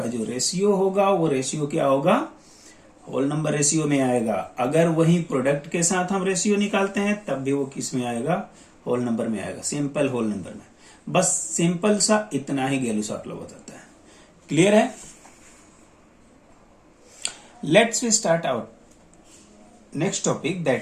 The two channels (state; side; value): identical; both; correlation 1.00